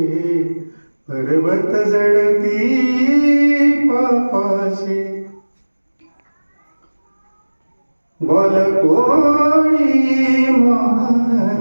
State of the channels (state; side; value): inverted; both; correlation -1.00